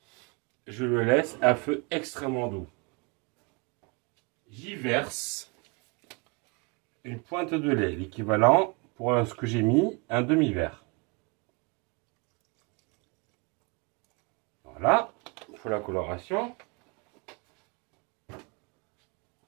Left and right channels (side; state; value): left; quieter; 30.9 dB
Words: Je le laisse à feu extrêmement doux. J'y verse une pointe de lait, l'équivalent pour ce que j'ai mis, un demi-verre. Voilà, il faut la coloration.